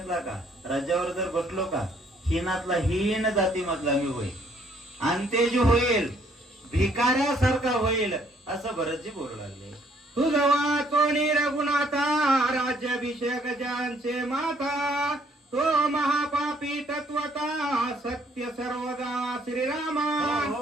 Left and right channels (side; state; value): both; normal; correlation 0.65